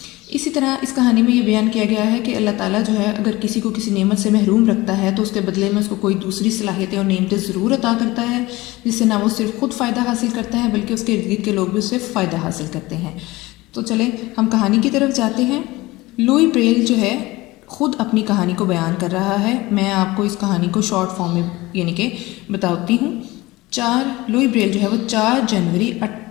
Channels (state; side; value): quieter; right; 20.2 dB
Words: इसी तरह इस कहानी में ये बयान किया गया है कि अल्लाह ताला जो है अगर किसी को किसी नेमत से महरूम रखता है तो उसके बदले में उसको कोई दूसरी सलाहियतें और नेमतें ज़रूर अता करता है, जिससे ना वो सिर्फ खुद फ़ायदा हासिल करता है बल्कि उसके इर्द गिर्द के लोग भी उससे फ़ायदा हासिल करते हैं। तो चलें हम कहानी की तरफ जाते हैं। लुई ब्रेल जो है ख़ुद अपनी कहानी को बयान कर रहा है। मैं आपको इस कहानी को शॉर्ट फॉर्म में यानी कि बताती हूँ। लुई ब्रेल जो है वो 4 जनवरी